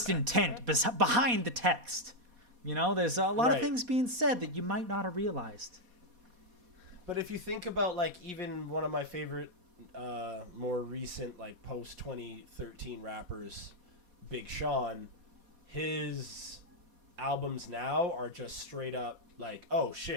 intent behind the text, you know, there's a lot of things being said that you might not have realized. But if you think about, like, even one of my favorite, more recent, like, post-2013 rappers, Big Sean, his albums now are just straight up like, oh,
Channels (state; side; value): late; left; 4.2 ms